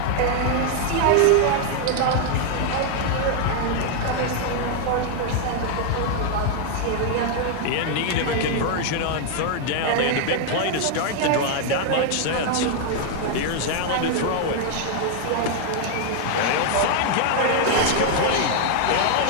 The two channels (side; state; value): both; different; correlation 0.00